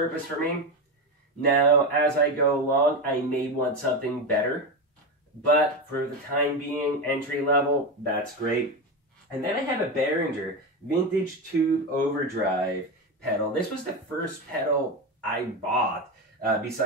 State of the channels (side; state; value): both; normal; correlation 0.17